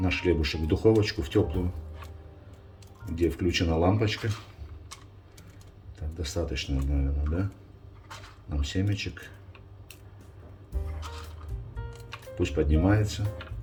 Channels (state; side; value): identical; both; correlation 1.00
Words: хлебушек в духовочку, в теплую, где включена лампочка. Так, достаточно, наверное, да? Нам семечек. Пусть поднимается.